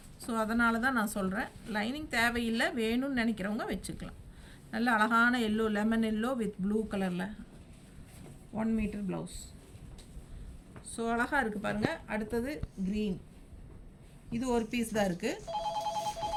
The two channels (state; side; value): identical; both; correlation 1.00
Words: ஸோ அதனால தான் நான் சொல்கிறேன், லைனிங் தேவையில்லை, வேணும்னு நினைக்கிறவங்க வச்சுக்கலாம். நல்ல அழகான yellow, lemon yellow with blue கலரில் 1 மீட்டர் ப்ளவுஸ். ஸோ அழகாக இருக்குது பாருங்கள். அடுத்தது க்ரீன். இது ஒரு பீஸ் தான் இருக்குது.